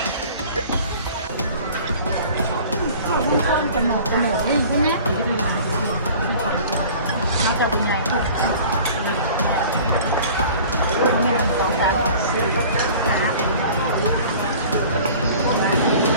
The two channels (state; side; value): inverted; both; correlation -0.45